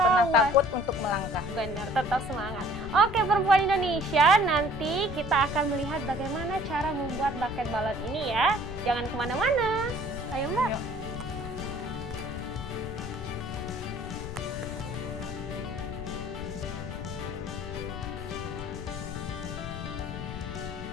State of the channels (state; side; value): noise; left; rumble, 9 dB below the sound